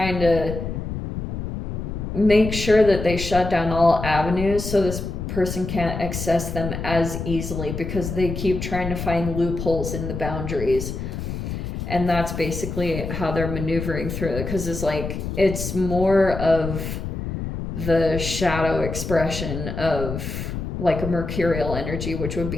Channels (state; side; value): noise; left; rumble, 5 dB below the sound